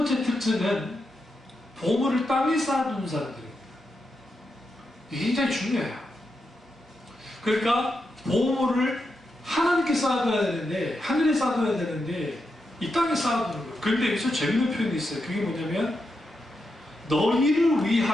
특징은 보물을 땅에 쌓아두는 사람들입니다. 이게 굉장히 중요해요. 그러니까 보물을 하나님께 쌓아둬야 되는데, 하늘에 쌓아둬야 되는데 이 땅에 쌓아두는 거예요. 그런데 여기서 재밌는 표현이 있어요. 그게 뭐냐면 너희를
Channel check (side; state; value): both; normal; correlation 0.86